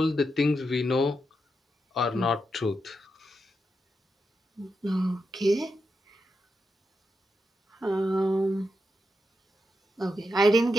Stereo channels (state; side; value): normal; both; correlation 0.85